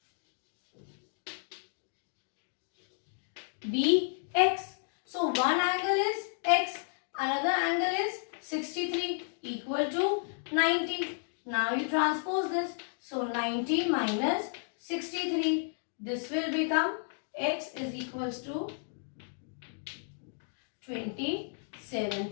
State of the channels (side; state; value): right; silent; digital silence